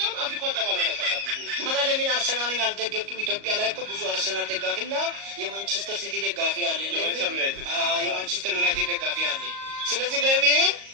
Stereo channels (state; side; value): late; left; 38 ms